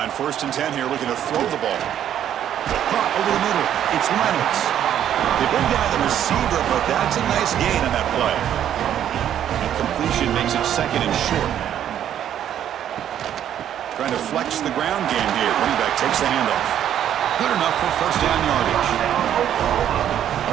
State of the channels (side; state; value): left; quieter; 10.3 dB